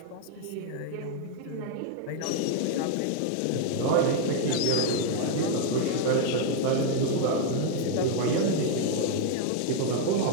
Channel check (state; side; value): different; both; correlation 0.00